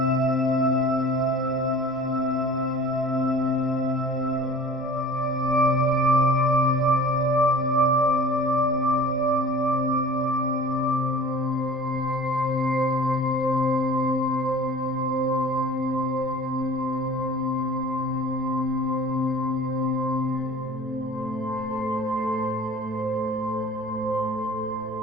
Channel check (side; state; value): right; noise; rumble, 25 dB below the sound